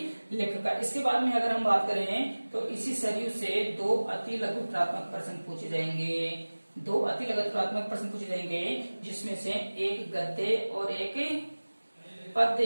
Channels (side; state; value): both; inverted; correlation -1.00